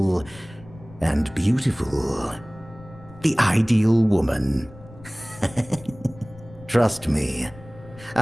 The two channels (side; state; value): left; noise; rumble, 20 dB below the sound